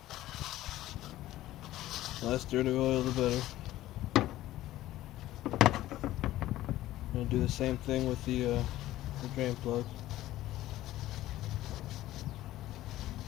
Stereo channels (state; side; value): quieter; right; 15.1 dB